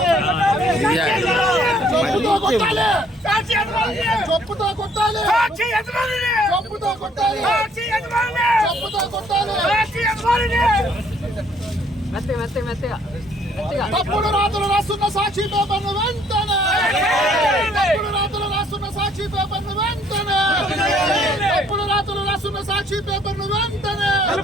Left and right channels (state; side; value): normal; both; correlation 0.63